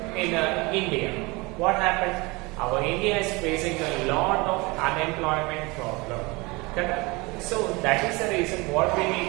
in India, what happened? Our India is facing a lot of unemployment problem. So that is the reason what we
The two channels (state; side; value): quieter; left; 25.0 dB